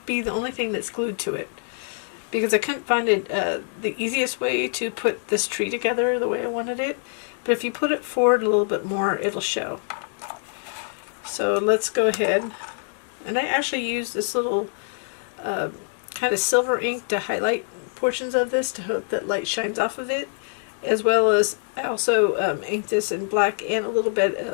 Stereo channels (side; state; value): right; silent; 62 dB below the other